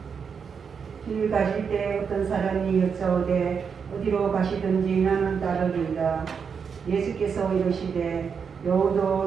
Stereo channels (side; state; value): left; quieter; 6.3 dB